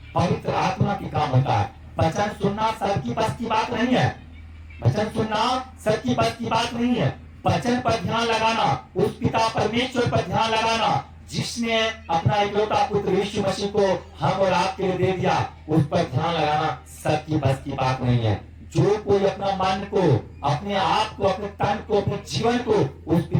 पवित्र आत्मा की काम होता है। वचन सुनना सबकी बस की बात नहीं है। वचन सुनना सबकी बस की बात नहीं है। वचन पर ध्यान लगाना, उस पिता परमेश्वर पर ध्यान लगाना जिसने अपना इकलौता पुत्र यीशु मसीह को हम और आपके लिए दे दिया, उस पर ध्यान लगाना सबकी बस की बात नहीं है। जो कोई अपना मन को, अपने आप को, अपने तन को, अपने जीवन को उस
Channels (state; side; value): identical; both; correlation 1.00